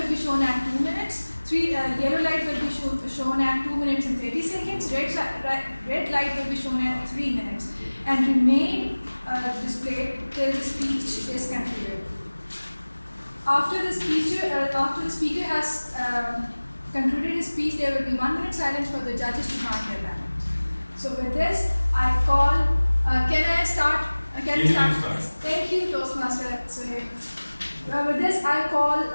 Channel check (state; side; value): inverted; both; correlation -1.00